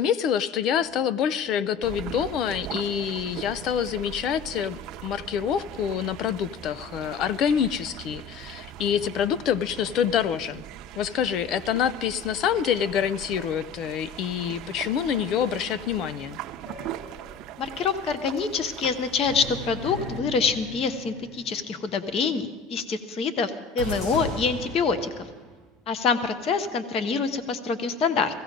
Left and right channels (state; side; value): quieter; right; 5.9 dB